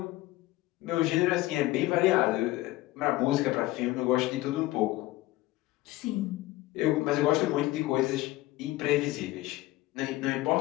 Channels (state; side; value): quieter; right; 17.9 dB